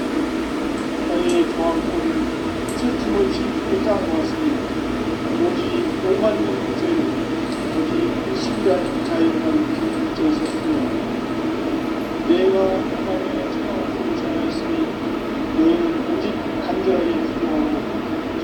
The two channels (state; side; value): identical; both; correlation 1.00